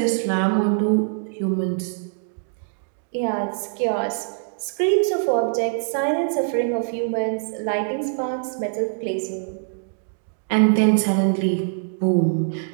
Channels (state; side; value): silent; left; digital silence